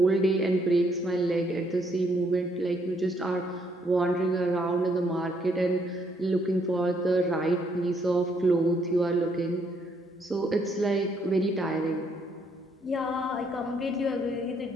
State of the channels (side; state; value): both; normal; correlation 0.70